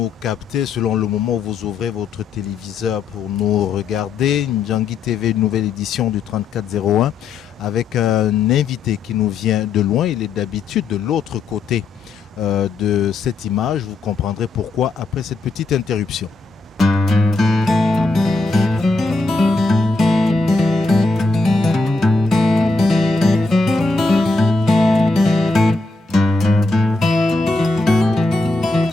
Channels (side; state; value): right; quieter; 3.6 dB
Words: captez, selon le moment où vous ouvrez votre téléviseur pour nous regarder. Ndjangi TV, une nouvelle édition du 3401 avec un invité qui nous vient de loin. Il est d'habitude de l'autre côté de cette image. Vous comprendrez pourquoi après cette petite interruption.